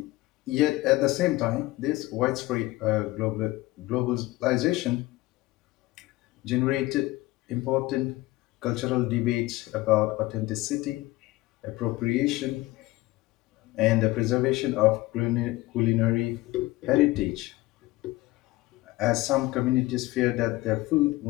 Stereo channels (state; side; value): quieter; right; 19.2 dB